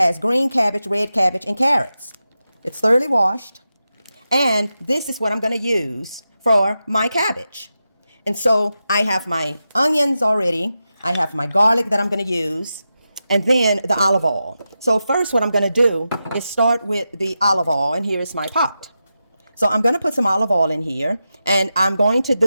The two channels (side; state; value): both; inverted; correlation -0.90